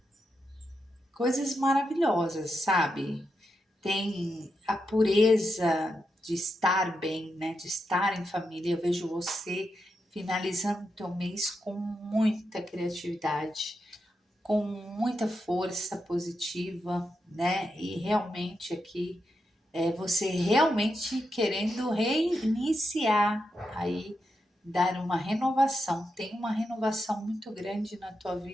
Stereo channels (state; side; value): normal; both; correlation 0.85